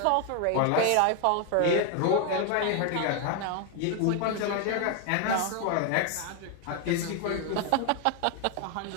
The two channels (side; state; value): both; different; correlation 0.01